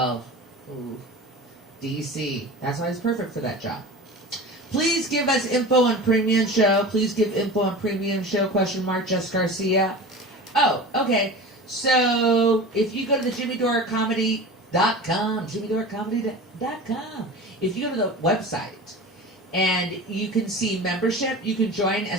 Ooh. DC. That's why he's perfect for that job. Please give us info on Premium Show. Please give info on Premium Show, question mark, Jess Garcia. Oh, okay. So, if you go to the JimmyDoreComedy.com, JimmyDoreComedy.com, if you go to the website, and you can see membership, you can join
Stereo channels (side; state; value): both; normal; correlation 0.34